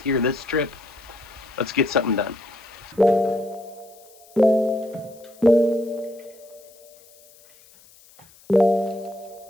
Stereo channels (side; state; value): left; noise; hiss, 26 dB below the sound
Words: this trip. Let's get something done.